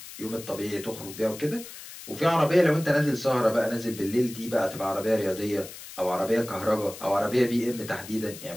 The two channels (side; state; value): left; noise; hiss, 14 dB below the sound